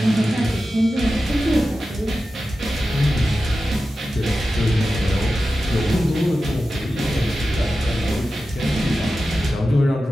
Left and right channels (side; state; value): both; normal; correlation 0.93